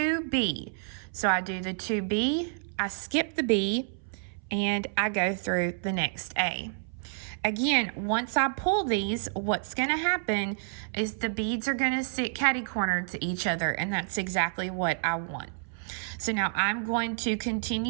So I do the 2B, I skip the B, and I go through the next A. Again, once I pull these, what's going to happen is the beads are going to sit catty-cornered to each other, and that's exactly what I want. So now I'm going to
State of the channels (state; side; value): silent; left; 58 dB below the other